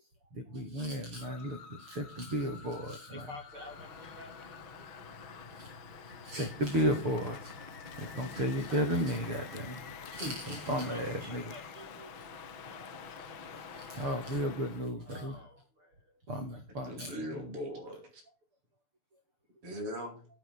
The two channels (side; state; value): left; late; 6.8 ms